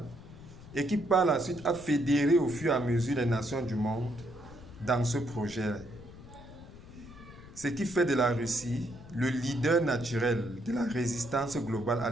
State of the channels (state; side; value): noise; left; rumble, 17 dB below the sound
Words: et qui par la suite a fédéré au fur et à mesure les nations du monde dans ce projet. Ce qui fait de la Russie le leader naturel de la résistance globale à